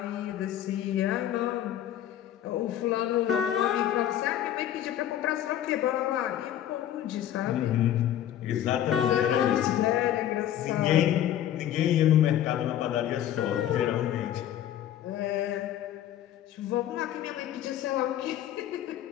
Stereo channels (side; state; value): right; quieter; 11.4 dB